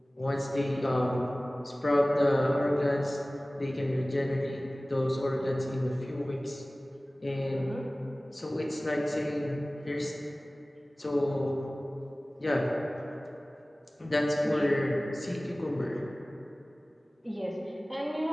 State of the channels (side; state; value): both; normal; correlation 0.98